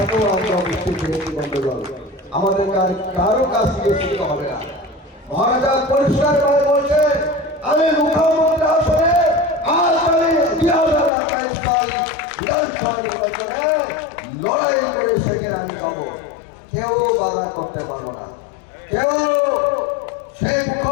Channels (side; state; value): right; drops out; at 11.1 s